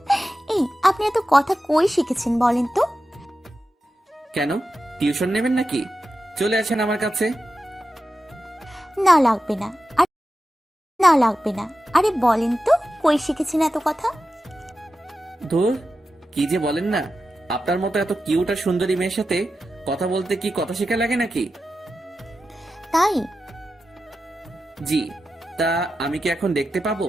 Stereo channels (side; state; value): both; normal; correlation 0.91